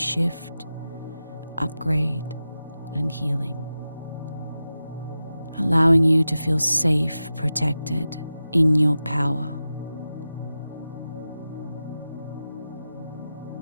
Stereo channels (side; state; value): both; inverted; correlation -0.93